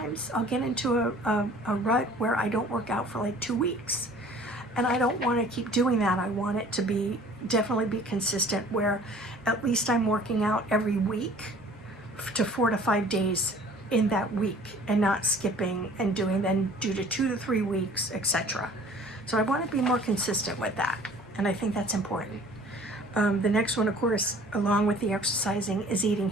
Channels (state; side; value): normal; both; correlation 0.50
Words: I'll get into a rut where I don't work out for like 2 weeks. And I don't want to keep doing that. I want it to definitely be consistent, where at least I'm working out every week to 4 to 5 days in that week, and not skipping and doing then due to 2 to 3 weeks, etc. So I want to be more consistent with that, and I think that's important. The next one, of course, along with the exercising, is eating